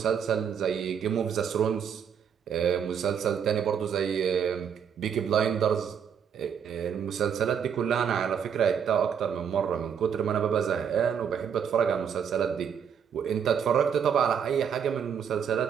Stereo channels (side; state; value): left; quieter; 7.7 dB